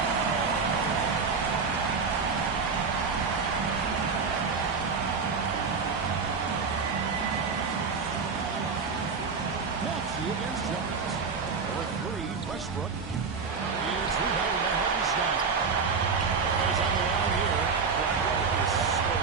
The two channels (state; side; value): quieter; left; 5.2 dB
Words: Against Jones. For three, Westbrook. It's rebounded by Hartenstein. He's on the line here. Brown is so